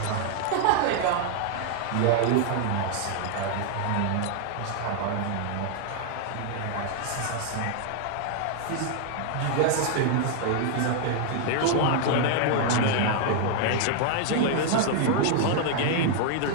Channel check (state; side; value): different; both; correlation 0.00